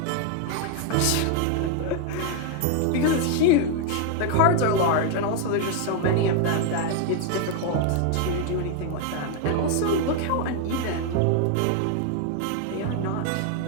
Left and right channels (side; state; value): both; different; correlation 0.00